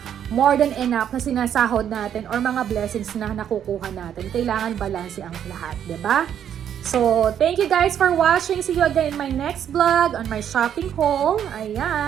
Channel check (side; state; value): left; quieter; 9.4 dB